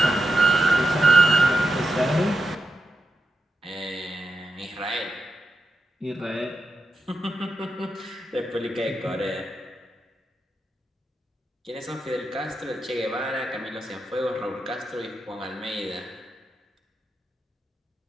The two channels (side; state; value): both; normal; correlation 0.87